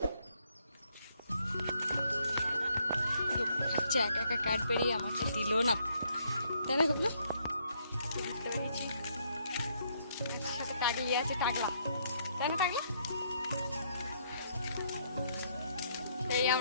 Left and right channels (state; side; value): inverted; both; correlation -0.71